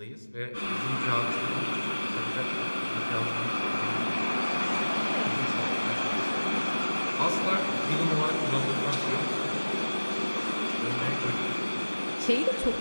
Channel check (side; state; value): both; inverted; correlation -1.00